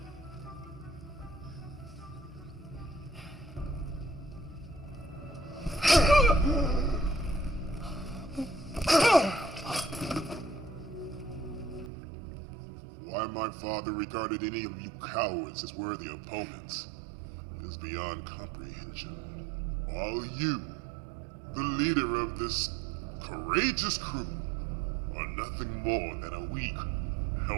Why my father regarded any of you cowards as worthy opponents is beyond comprehension. While you, the leader of this courageous crew, are nothing more than a weak,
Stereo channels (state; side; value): drops out; left; at 11.9 s